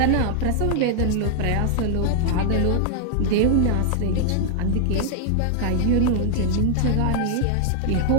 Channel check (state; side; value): different; both; correlation 0.00